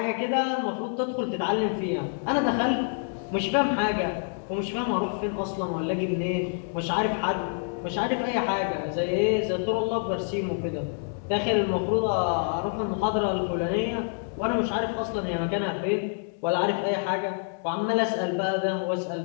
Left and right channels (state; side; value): silent; right; digital silence